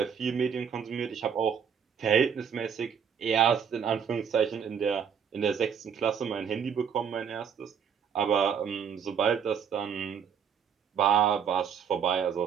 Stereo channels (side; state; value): left; quieter; 7.4 dB